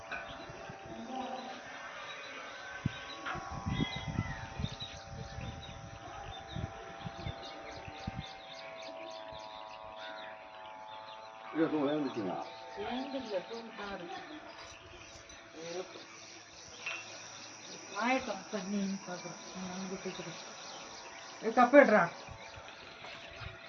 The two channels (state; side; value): identical; both; correlation 1.00